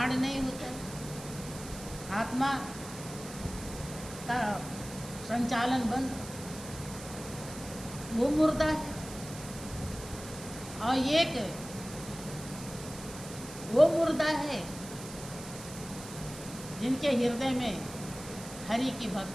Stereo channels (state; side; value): noise; right; hiss, 13 dB below the sound